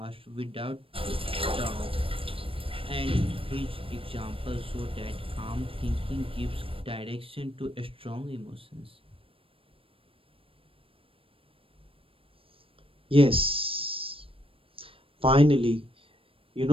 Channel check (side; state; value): left; late; 0.26 ms